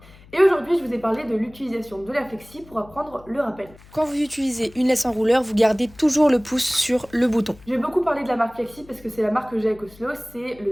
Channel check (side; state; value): left; noise; hum, 23 dB below the sound